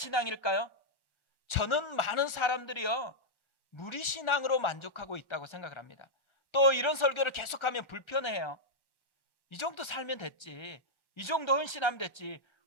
저는 많은 사람들이요, 무리신앙으로 만족하고 있다고 생각을 합니다. 또 이런 설교를 계속하면 불편해요. 이 정도 살면 됐지, 이 정도 헌신하면 됐지,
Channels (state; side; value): late; right; 1.4 ms